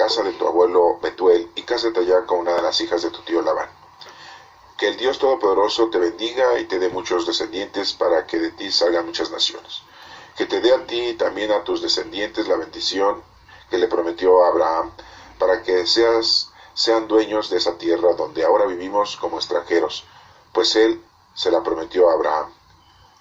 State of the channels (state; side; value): identical; both; correlation 1.00